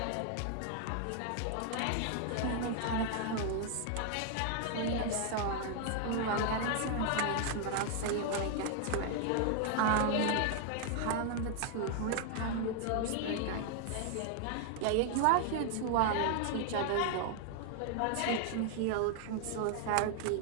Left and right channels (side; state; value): both; different; correlation 0.00